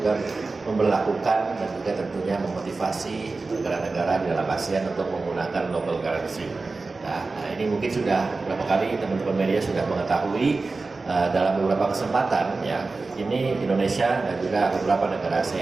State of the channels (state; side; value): quieter; left; 3.8 dB